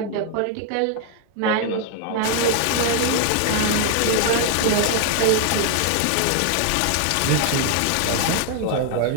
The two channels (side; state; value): both; different; correlation 0.00